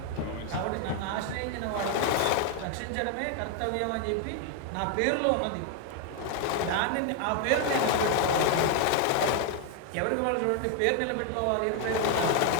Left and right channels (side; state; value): both; different; correlation 0.01